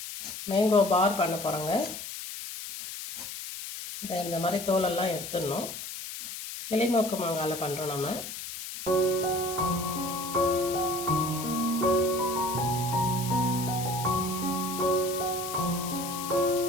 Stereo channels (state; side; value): noise; left; hiss, 8 dB below the sound